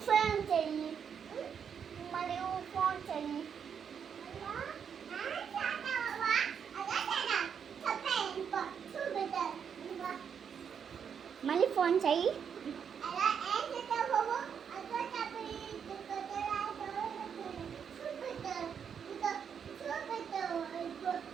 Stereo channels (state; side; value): quieter; left; 7.4 dB